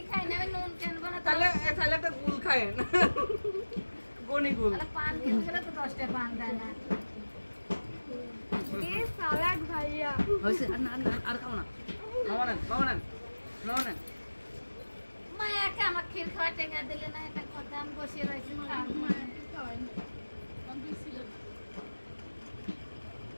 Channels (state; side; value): inverted; both; correlation -1.00